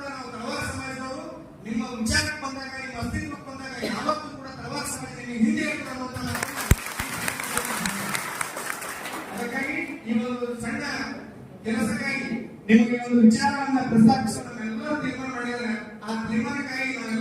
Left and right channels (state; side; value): identical; both; correlation 1.00